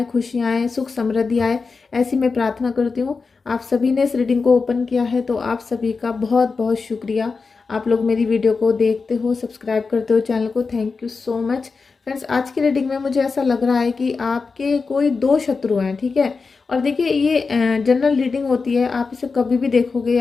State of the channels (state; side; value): quieter; right; 4.6 dB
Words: खुशियाँ आए, सुख समृद्धि आए, ऐसी मैं प्रार्थना करती हूँ। आप सभी ने इस रीडिंग को ओपन किया है तो आप सभी का बहुत बहुत शुक्रिया। आप लोग मेरी वीडियो को देखते हो, सब्सक्राइब करते हो चैनल को, thank you so much. Friends, आज की रीडिंग में मुझे ऐसा लग रहा है कि आपके कोई दो शत्रु हैं, ठीक है। और देखिए, ये जनरल रीडिंग होती है, आप इसे कभी भी देखोगे,